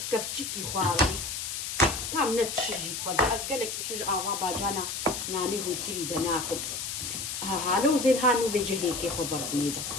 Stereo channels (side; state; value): left; noise; hiss, 4 dB below the sound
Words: كفتشكي خواري تام نتشجي خد از قالك يحج آوا باجانا ناني هو كيري دناكم هالو زين هانو بيجي هيكي خبرتني